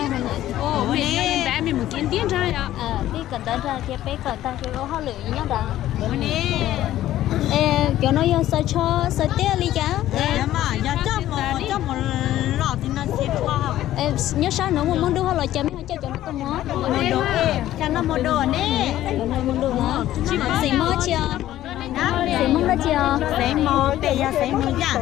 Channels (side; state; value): right; quieter; 13.6 dB